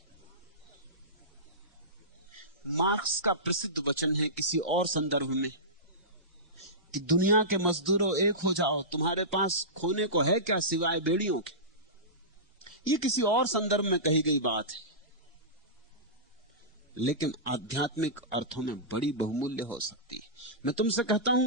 मार्क्स का प्रसिद्ध वचन है किसी और संदर्भ में कि दुनिया के मजदूरों एक हो जाओ, तुम्हारे पास खोने को है क्या सिवाय बेड़ियों के। यह किसी और संदर्भ में कही गई बात है, लेकिन आध्यात्मिक अर्थों में बड़ी बहुमूल्य हो सकती है। मैं तुमसे कहता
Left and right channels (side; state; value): both; normal; correlation -0.19